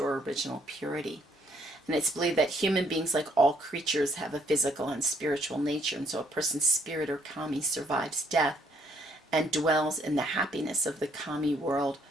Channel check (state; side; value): normal; both; correlation 0.67